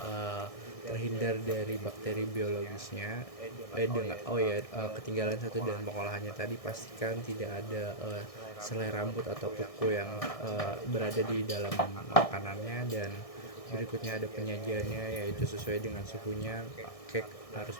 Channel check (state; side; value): late; right; 1.6 ms